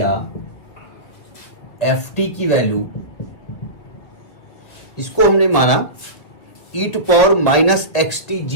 एफ टी की वैल्यू, इसको हमने माना e to power minus x t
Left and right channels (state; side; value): late; right; 1.8 ms